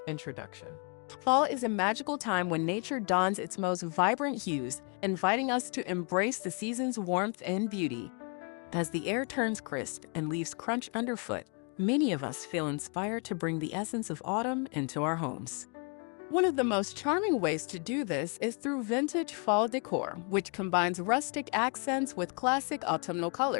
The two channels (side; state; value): right; quieter; 37.4 dB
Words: Introduction. Fall is a magical time when nature dons its most vibrant hues, inviting us to embrace the season's warmth and beauty. As the air turns crisp and leaves crunch underfoot, many of us feel inspired to bring the essence of autumn into our homes. One of the most charming ways to do this is through vintage fall decor, which combines rustic accents with classic autumnal